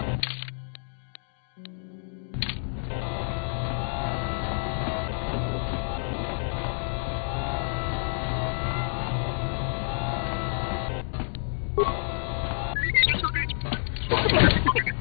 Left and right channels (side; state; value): right; silent; digital silence